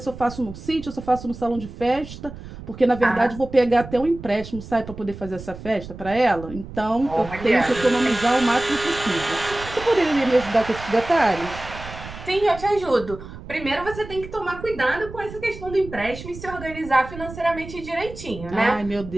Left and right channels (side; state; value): right; noise; rumble, 13 dB below the sound